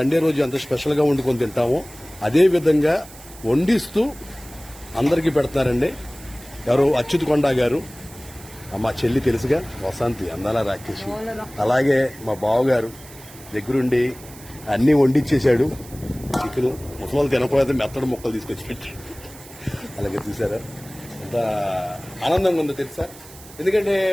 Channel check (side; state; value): right; noise; hiss, 19 dB below the sound